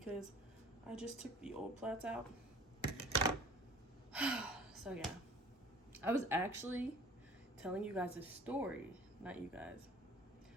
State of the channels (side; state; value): both; normal; correlation 0.48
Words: I just took the old plaits out. So yeah, I was actually telling you guys a story, not you guys.